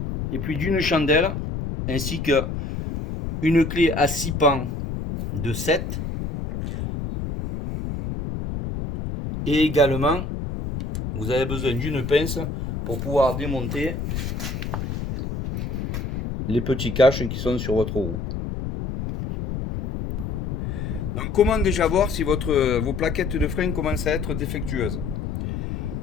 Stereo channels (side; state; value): left; noise; rumble, 4 dB below the sound